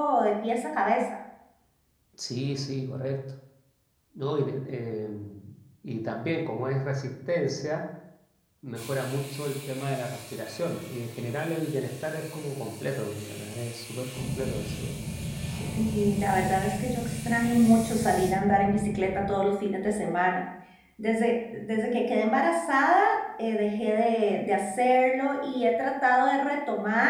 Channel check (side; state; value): both; identical; correlation 1.00